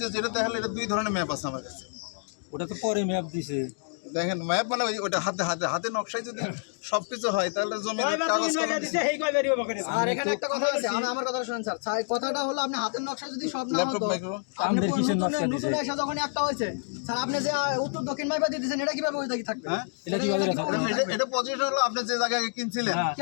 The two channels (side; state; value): right; silent; 59 dB below the other